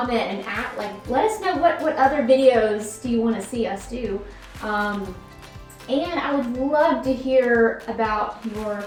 and let us know what other videos do you want to see us do. And I would love to hear about your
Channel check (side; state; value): both; identical; correlation 1.00